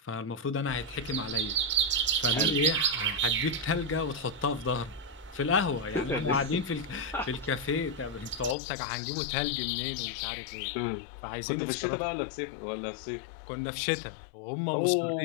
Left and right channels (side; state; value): right; drops out; at 8.6 s